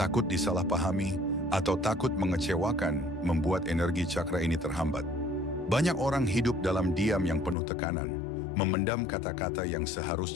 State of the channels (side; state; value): right; drops out; at 7.6 s